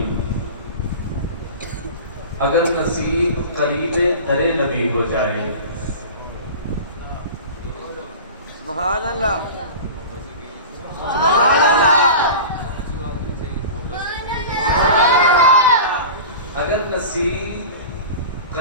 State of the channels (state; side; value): inverted; both; correlation -0.33